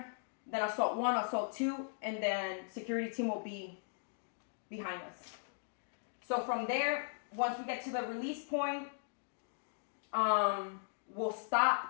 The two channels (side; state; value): right; silent; digital silence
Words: then assault 1, assault 2, and then security team will be behind us. So from there, once we get to the release point, we'll